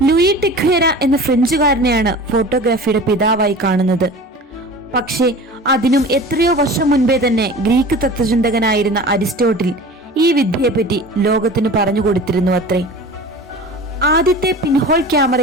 ലൂയി ടിക്വേര എന്ന ഫ്രഞ്ചുകാരനെയാണ് ഫോട്ടോഗ്രാഫിയുടെ പിതാവായി കാണുന്നത്. പക്ഷേ അതിനും എത്രയോ വർഷം മുൻപേ തന്നെ ഗ്രീക്ക് തത്വചിന്തകനായിരുന്ന അരിസ്റ്റോട്ടിൽ ഈ വിദ്യയെപ്പറ്റി ലോകത്തിന് പറഞ്ഞു കൊടുത്തിരുന്നു അത്രേ. ആദ്യത്തെ പിൻഹോൾ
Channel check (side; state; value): both; normal; correlation 0.38